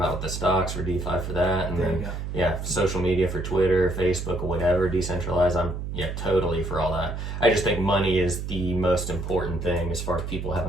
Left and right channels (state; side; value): noise; right; hum, 5 dB below the sound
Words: with the stocks for DeFi for that, and then social media for Twitter, Facebook, or whatever, decentralized. I'm totally for all that. I just think money is the most important thing as far as people